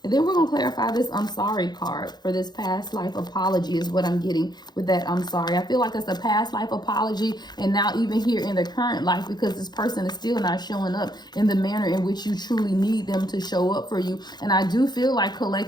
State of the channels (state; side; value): late; right; 0.20 ms